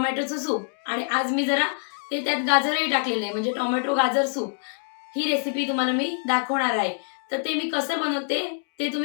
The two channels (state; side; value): silent; right; digital silence